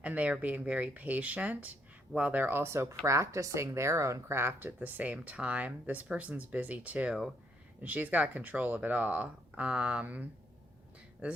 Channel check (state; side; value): normal; both; correlation 0.73